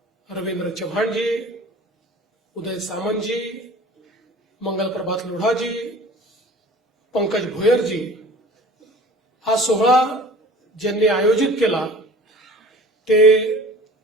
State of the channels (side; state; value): both; normal; correlation 0.44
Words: रवींद्र चव्हाणजी, उदय सामंतजी, मंगल प्रभात लोढाजी, पंकज भोयरजी, हा सोहळा ज्यांनी आयोजित केला ते